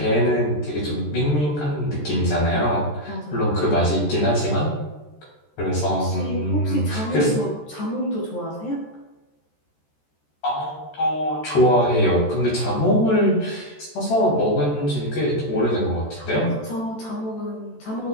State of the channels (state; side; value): late; right; 14 ms